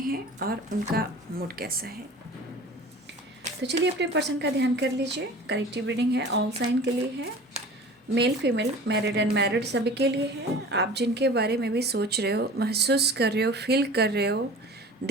हैं और उनका मूड कैसा है। तो चलिए अपने पर्सन का ध्यान कर लीजिए। कलेक्टिव रीडिंग है, ऑल साइन के लिए है, मेल फीमेल, मैरिड अनमैरिड सभी के लिए है। आप जिनके बारे में भी सोच रहे हो, महसूस कर रहे हो, फील कर रहे हो,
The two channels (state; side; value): normal; both; correlation 0.41